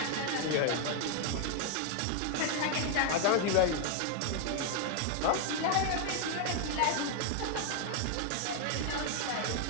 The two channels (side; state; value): both; different; correlation 0.00